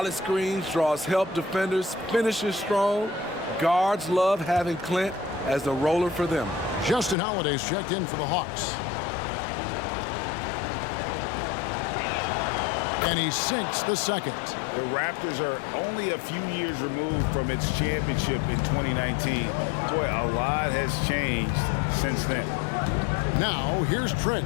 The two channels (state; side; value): drops out; right; at 7.2 s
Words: screens, draws help defenders, finishes strong. Guards love having Clint as the roller for them. Justin Holiday's checked in for the Hawks. And he sinks the second. The Raptors are only a few years removed from its championship in 2019. Boy, a lot has changed since then. Now, here's